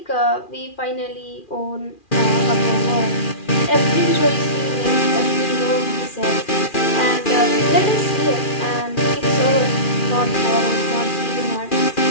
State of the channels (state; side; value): late; right; 2.4 ms